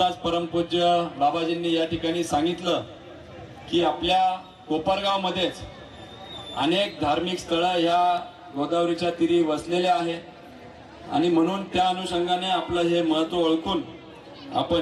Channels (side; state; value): both; identical; correlation 1.00